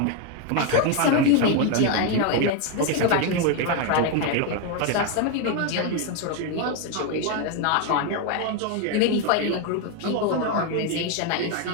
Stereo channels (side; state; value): both; different; correlation 0.01